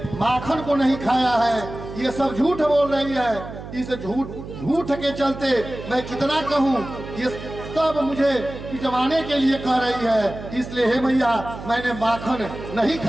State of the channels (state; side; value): noise; right; hum, 11 dB below the sound